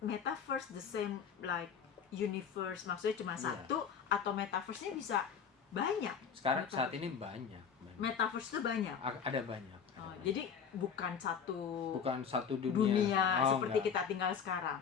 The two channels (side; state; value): right; quieter; 7.1 dB